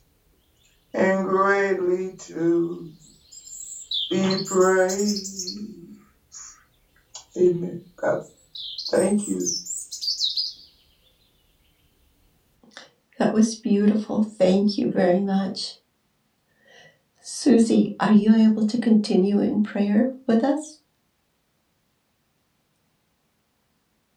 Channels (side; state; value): both; identical; correlation 1.00